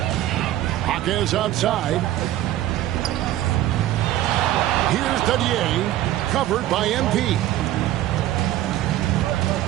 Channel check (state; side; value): quieter; left; 14.0 dB